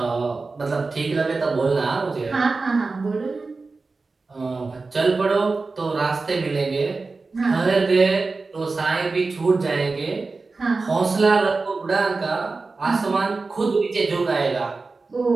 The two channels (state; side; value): quieter; left; 3.9 dB